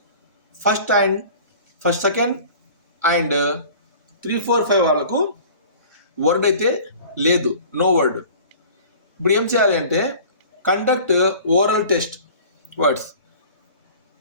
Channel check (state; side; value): inverted; both; correlation -0.44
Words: first second and 3, 4, 5 వాళ్ళకు వర్డ్ అయితే లేదు, no word. ఇప్పుడు ఏం చేయాలి అంటే conduct oral test words.